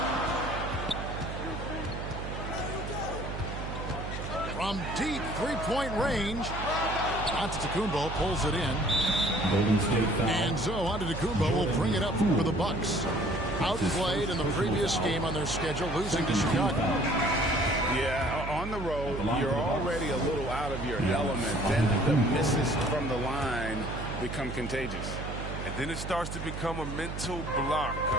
From deep three-point range, Antetokounmpo pulls it in. And so Antetokounmpo will bring it up for the Bucks. Outplayed in the previous game on their schedule, losing to Chicago. Yeah, on the road, you're already a little out of your element. Then the misses from the line become contagious. And then it starts to become a mental block.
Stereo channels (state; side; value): noise; right; hum, 7 dB below the sound